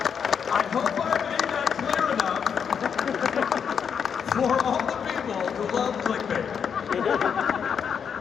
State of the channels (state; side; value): quieter; right; 7.1 dB